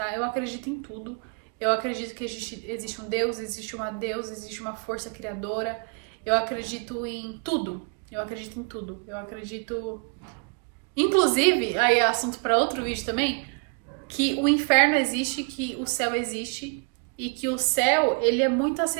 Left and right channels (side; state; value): left; quieter; 37.4 dB